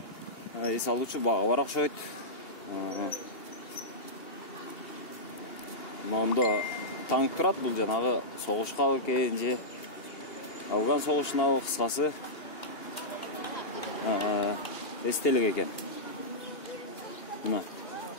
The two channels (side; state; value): right; late; 2.8 ms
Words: эс алуучу бага бар окшойт. Мондо танк турат, бул жанагы согушка экен же Афган согушуна кыскасы эстелик экен.